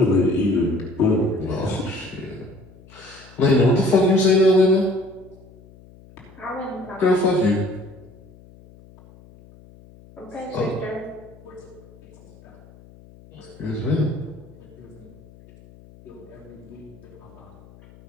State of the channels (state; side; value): noise; left; hum, 23 dB below the sound